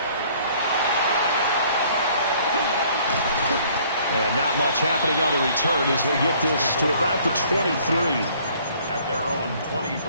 And not much happening on the return as they get this to about the 23. At their own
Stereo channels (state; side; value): inverted; both; correlation -0.58